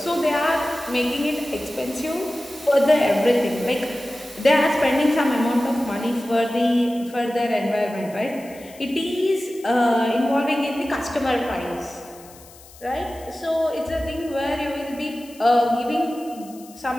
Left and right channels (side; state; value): left; noise; hiss, 22 dB below the sound